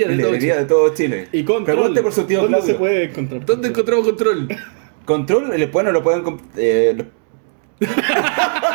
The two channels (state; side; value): silent; left; digital silence